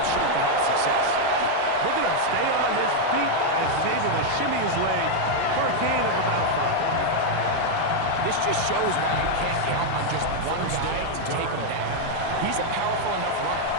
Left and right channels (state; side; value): different; both; correlation 0.00